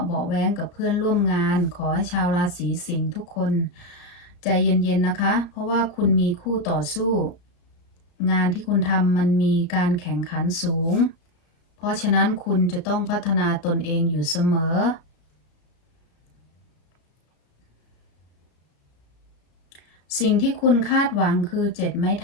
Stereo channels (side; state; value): right; late; 34 ms